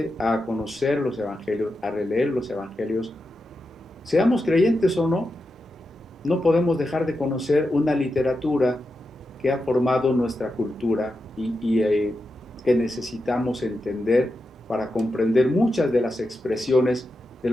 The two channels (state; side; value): normal; both; correlation 0.89